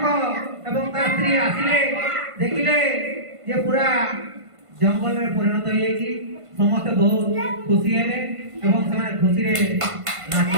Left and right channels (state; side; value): late; left; 1.5 ms